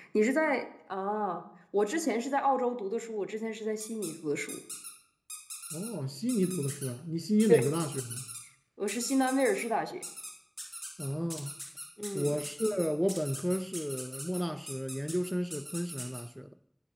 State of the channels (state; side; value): identical; both; correlation 1.00